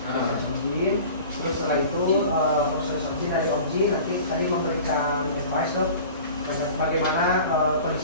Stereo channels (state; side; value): inverted; both; correlation -0.41